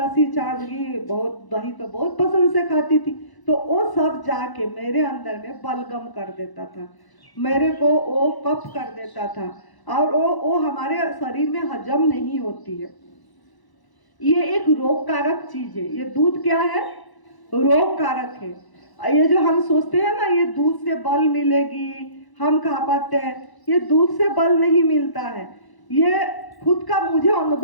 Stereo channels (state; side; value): late; right; 1.0 ms